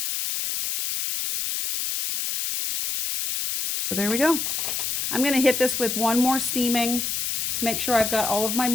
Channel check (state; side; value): noise; left; hiss, 1 dB below the sound